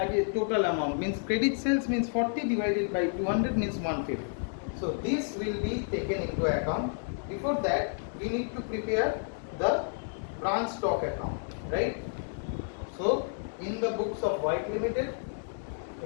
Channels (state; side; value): silent; right; 57 dB below the other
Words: total amount means credit sales means 40 divided by 200 means 150. So this will be taken into account. Before that, we need to prepare the branch stock account, right? So in the books of White Limited,